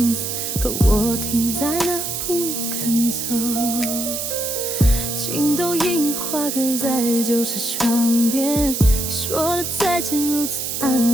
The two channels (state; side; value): noise; right; hiss, 3 dB below the sound